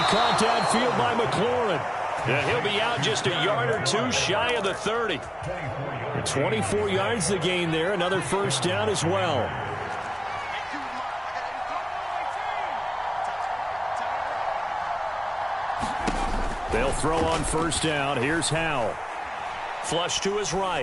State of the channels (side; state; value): both; identical; correlation 1.00